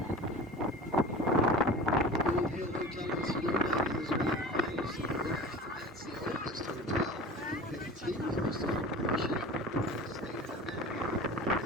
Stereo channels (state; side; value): normal; both; correlation 0.36